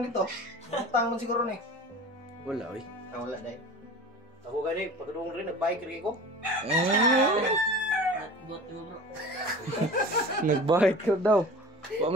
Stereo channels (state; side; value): normal; both; correlation 0.38